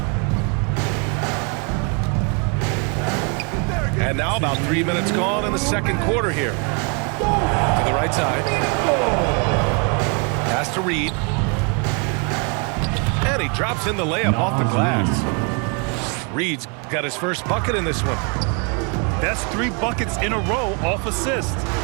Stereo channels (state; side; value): quieter; left; 35.9 dB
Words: And now about 3 minutes gone in the second quarter here. To the right side. Pass to Reed. And he drops in the layup off the glass. Reed's got his first bucket in this one. That's 3 buckets in a row off assist.